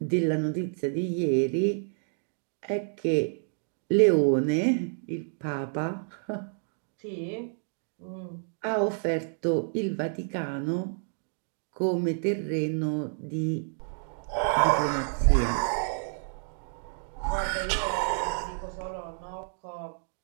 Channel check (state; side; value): silent; left; digital silence